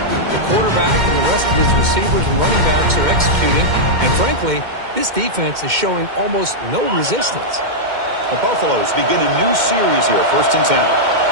quarterback and the rest of his receivers and running backs are executing. And frankly, this defense is showing almost no resistance. The Buffaloes begin a new series here, 1st and 10.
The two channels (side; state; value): left; late; 2.1 ms